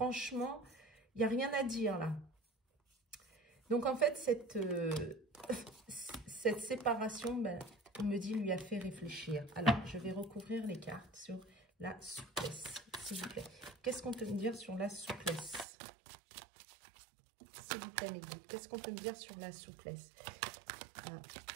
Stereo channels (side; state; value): left; drops out; at 15.7 s